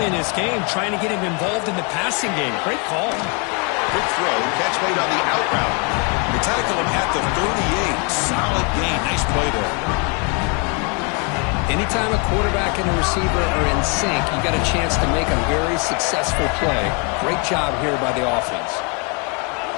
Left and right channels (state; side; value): quieter; right; 34.7 dB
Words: in this game, trying to get him involved in the passing game. Great call. Good throw. Catch made on the out route. They tackle him at the 38. Solid gain. Nice play there. Anytime a quarterback and a receiver are in sync, you got a chance to make a very successful play. Great job here by the offense.